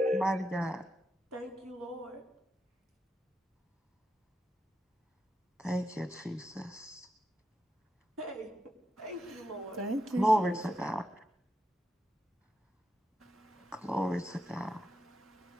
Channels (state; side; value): normal; both; correlation 0.85